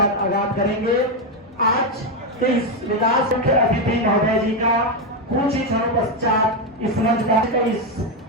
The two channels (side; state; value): both; normal; correlation 0.06